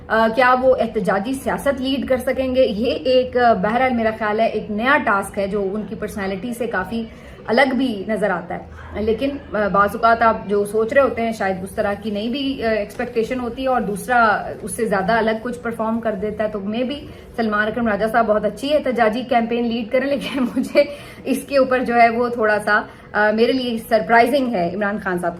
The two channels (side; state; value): both; identical; correlation 1.00